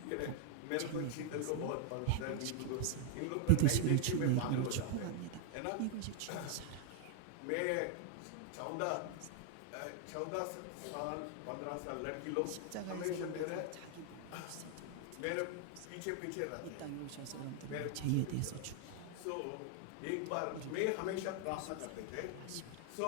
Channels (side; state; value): both; different; correlation 0.00